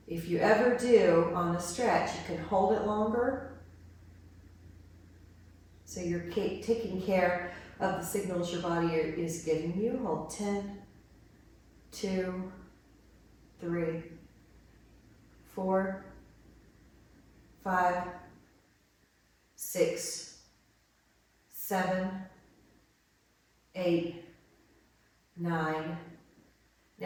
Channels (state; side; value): identical; both; correlation 1.00